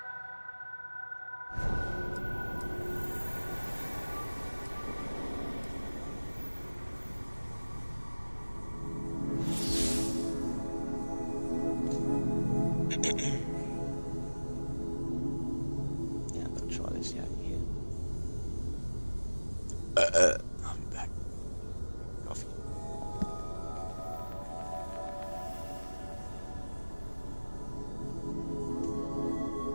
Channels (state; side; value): inverted; both; correlation -1.00